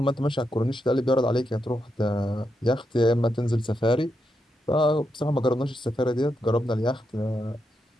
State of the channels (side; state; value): both; normal; correlation 0.84